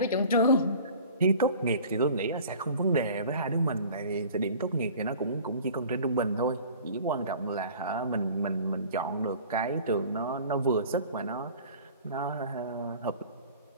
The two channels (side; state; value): both; inverted; correlation -0.45